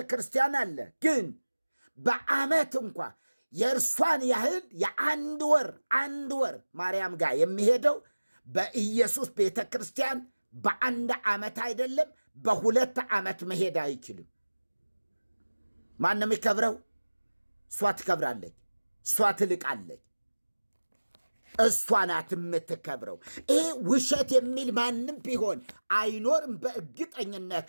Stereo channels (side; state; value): both; inverted; correlation -1.00